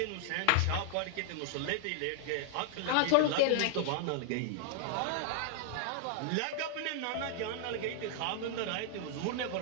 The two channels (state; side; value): different; both; correlation 0.00